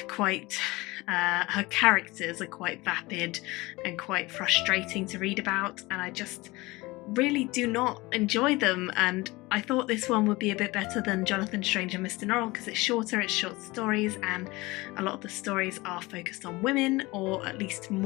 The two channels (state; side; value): quieter; right; 21.9 dB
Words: quite, her characters are quite vapid and quite frustrating to read about, and I just really do not enjoy them. And I thought this one would be a bit better than Jonathan Strange and Mr. Norrell because it's shorter, it's short stories, and a lot of the stories are focused on women, or at least